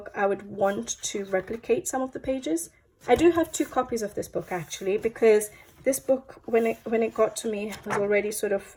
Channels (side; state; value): both; identical; correlation 1.00